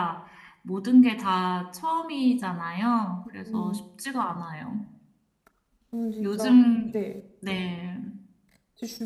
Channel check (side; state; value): both; identical; correlation 1.00